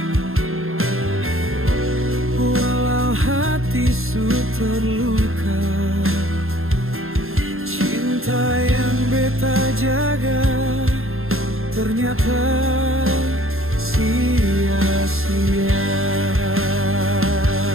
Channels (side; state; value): left; late; 0.61 ms